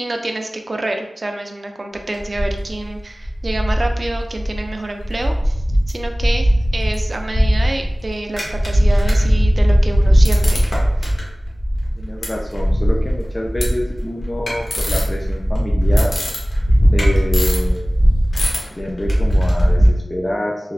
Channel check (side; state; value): both; normal; correlation 0.98